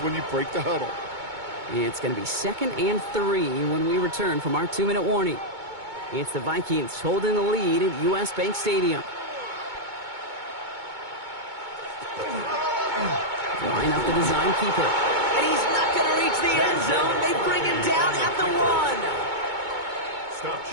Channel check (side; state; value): left; late; 2.2 ms